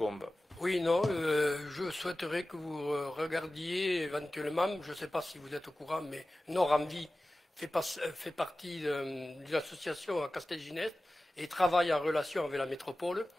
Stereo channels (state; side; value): normal; both; correlation 0.96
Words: Oui, non, je souhaiterais que vous regardiez éventuellement, je ne sais pas si vous êtes au courant, mais Nord-Envie fait partie de l'association à Castelginest et travaille en relation avec la métropole.